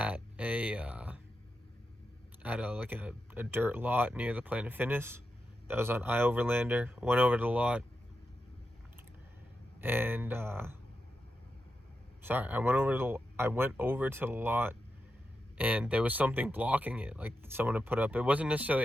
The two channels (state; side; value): normal; both; correlation 0.88